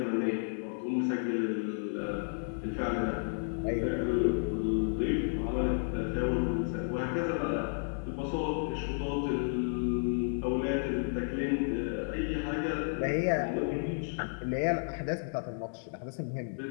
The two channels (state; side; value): silent; right; 56 dB below the other